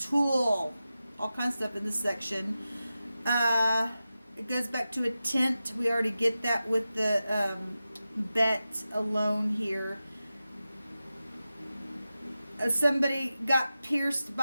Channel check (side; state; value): both; inverted; correlation -0.93